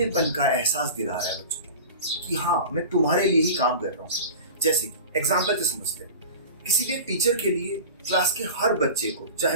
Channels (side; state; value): both; inverted; correlation -0.34